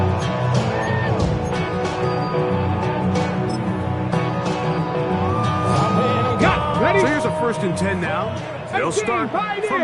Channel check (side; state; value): both; identical; correlation 1.00